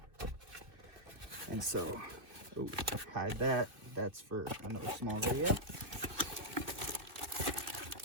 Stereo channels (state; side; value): late; left; 2.6 ms